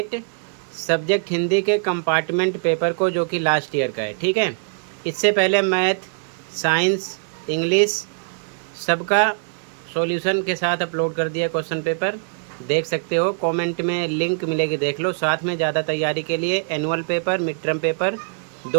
सब्जेक्ट हिंदी के कंपार्टमेंट पेपर को, जो कि लास्ट ईयर का है। ठीक है, इससे पहले मैथ, साइंस, इंग्लिश सबका सॉल्यूशन के साथ अपलोड कर दिया क्वेश्चन पेपर, देख सकते हो। कमेंट में लिंक मिलेगी, देख लो। साथ में ज़्यादा तैयारी के लिए annual paper, mid term paper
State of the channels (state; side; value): silent; left; digital silence